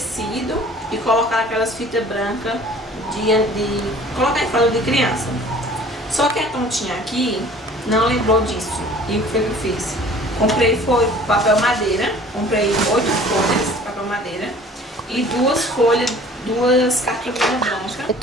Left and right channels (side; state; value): both; normal; correlation 0.49